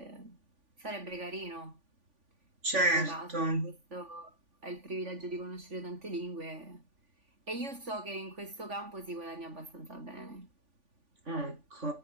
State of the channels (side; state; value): left; late; 3.5 ms